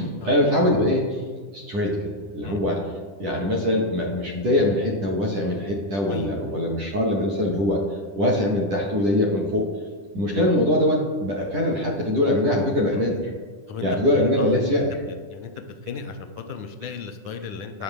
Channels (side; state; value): left; late; 10 ms